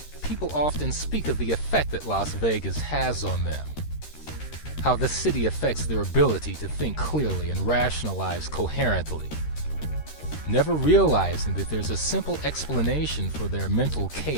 People often speak of the effect that Las Vegas has on them, how the city affects their ability to think clearly and rationalize coherently, never realizing that there's a simple explanation for their mental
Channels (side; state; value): right; late; 13 ms